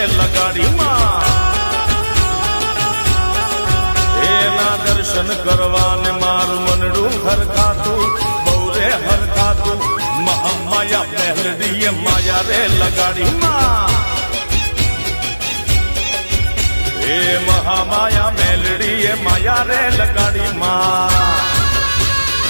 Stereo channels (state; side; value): inverted; both; correlation -1.00